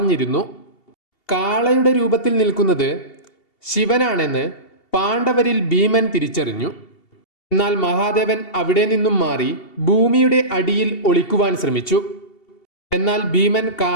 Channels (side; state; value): right; late; 2.7 ms